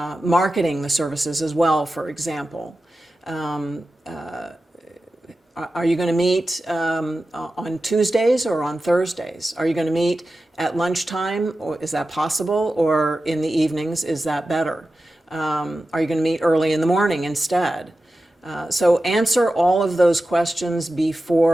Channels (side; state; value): both; normal; correlation 0.93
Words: marketing the services as well, for example? Are you going to meet on Tuesdays or on Thursdays? Are you going to meet at lunchtime, or is that possible? Or in the evenings, is that better? Are you going to meet early in the morning instead? So answer all of those questions